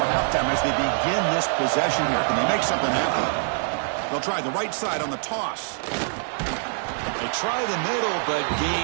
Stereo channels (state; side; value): silent; left; 62 dB below the other